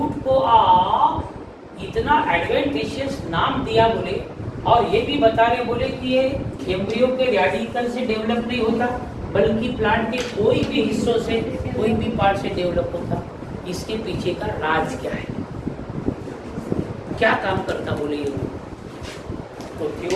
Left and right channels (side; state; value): both; identical; correlation 1.00